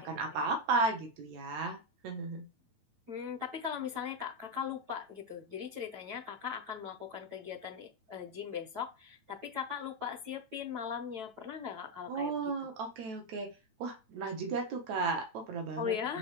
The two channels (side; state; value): left; late; 9.1 ms